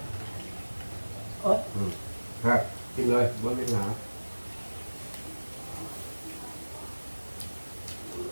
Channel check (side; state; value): both; inverted; correlation -1.00